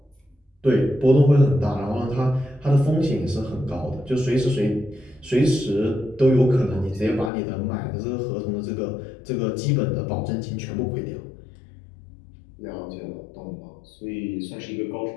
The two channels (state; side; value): drops out; right; at 7.3 s